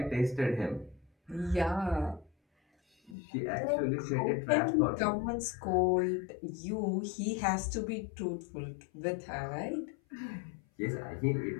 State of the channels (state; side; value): drops out; right; at 3.2 s